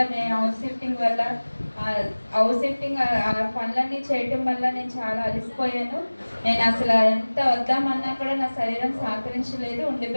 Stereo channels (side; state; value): both; inverted; correlation -1.00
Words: మేము హౌస్ షిఫ్టింగ్ పనులన్నీ చేయటం వల్ల నేను చాలా అలసిపోయాను. నేను అసలు ఎంత వద్దామన్నా కూడా నా శరీరం సహకరించలేదు.